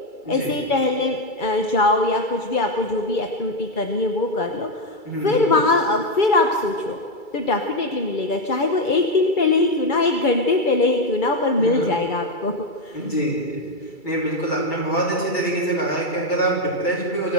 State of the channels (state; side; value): late; right; 2.3 ms